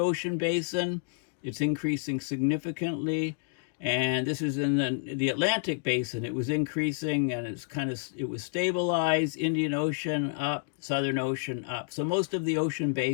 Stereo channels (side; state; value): right; silent; digital silence